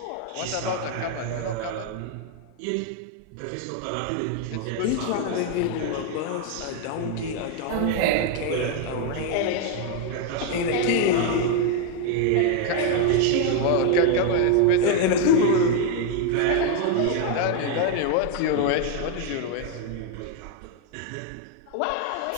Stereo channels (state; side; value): different; both; correlation 0.01